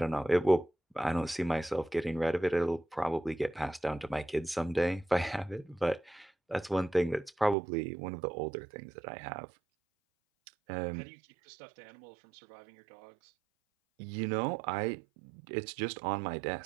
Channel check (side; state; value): left; drops out; at 7.6 s